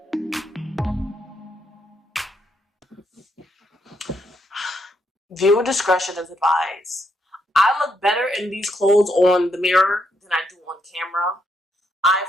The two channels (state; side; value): normal; both; correlation 0.77